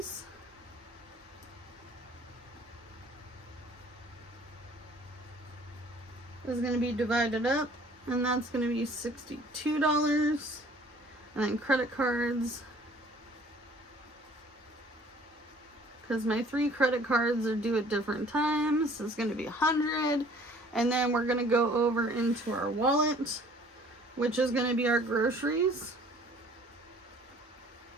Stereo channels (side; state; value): both; normal; correlation 0.53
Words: Is going to be divided up, and that's going to be $62. And then credit cards, because my 3 credit cards are due at different times, is going to be $100. And then we're going to go over into our wallet, which is going to be our groceries.